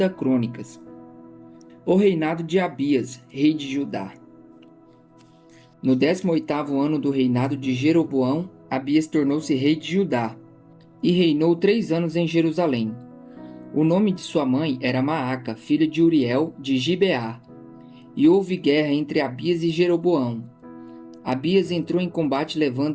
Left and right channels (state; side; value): identical; both; correlation 1.00